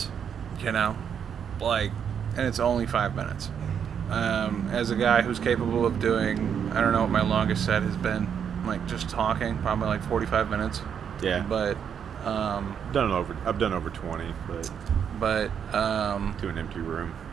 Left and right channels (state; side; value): quieter; left; 7.8 dB